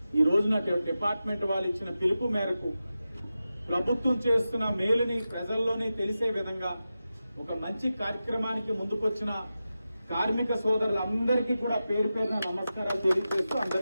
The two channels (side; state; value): both; inverted; correlation -0.92